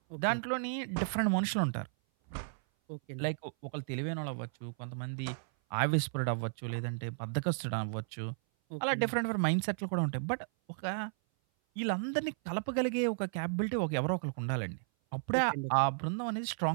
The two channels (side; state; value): left; silent; 55 dB below the other